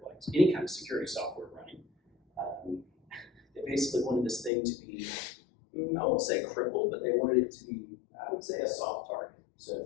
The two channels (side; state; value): right; drops out; at 4.5 s